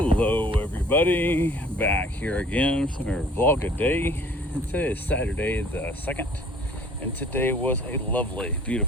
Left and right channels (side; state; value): both; normal; correlation 0.53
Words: everybody, back here again for our vlog a day. And today is Saturday the 2nd, and today was a lovely,